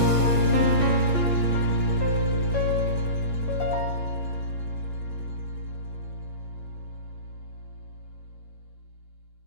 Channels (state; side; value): late; right; 6.3 ms